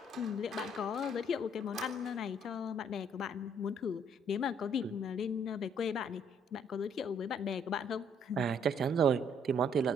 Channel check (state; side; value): normal; both; correlation 0.65